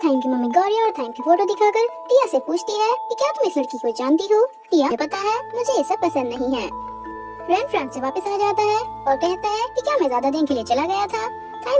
की mummy Gauri और थाइम की फोटो दिखाकर टिया से पूछती है कि क्या तुम इस लड़की को जानती हो। टिया को पता है मुझे ये सब पसंद नहीं है। रैन फ्रांस से वापस आ जाता है और कहता है कि क्या मैं ज्यादा दिन के लिए चला गया था।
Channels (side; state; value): both; identical; correlation 1.00